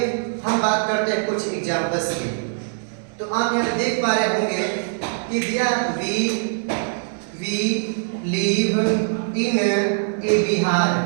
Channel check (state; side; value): silent; left; digital silence